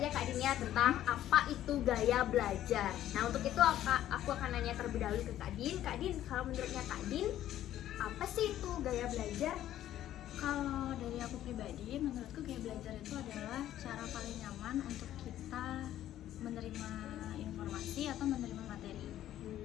Kak Dinda tentang apa itu gaya belajar. Nah, untuk itu aku akan nanya terlebih dahulu ke Kak Din. Kak Din, kalau menurutnya Kak Din, apa sih itu gaya belajar? Kalau dari aku pribadi, menurutku gaya belajar itu adalah cara paling nyaman untuk kita menerima informasi atau menerima materi.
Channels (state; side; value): quieter; right; 12.5 dB